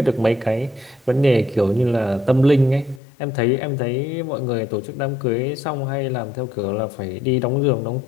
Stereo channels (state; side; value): drops out; right; at 3.0 s